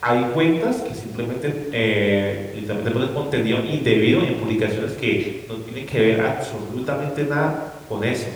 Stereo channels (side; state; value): both; identical; correlation 1.00